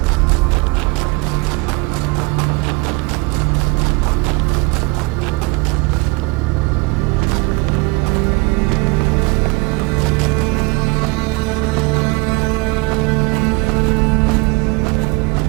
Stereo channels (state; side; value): quieter; left; 25.4 dB